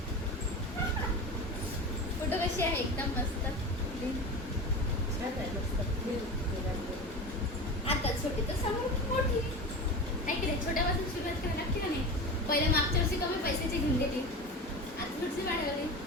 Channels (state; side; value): normal; both; correlation 0.28